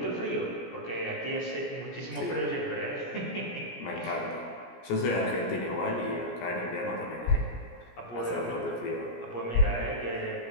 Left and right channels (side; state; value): right; late; 17 ms